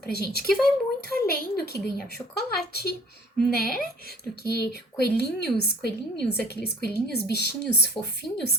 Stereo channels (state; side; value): normal; both; correlation 0.51